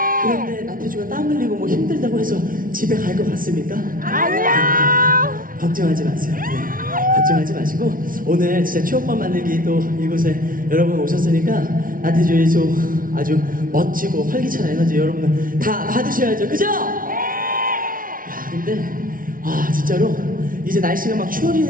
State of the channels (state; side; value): late; left; 0.40 ms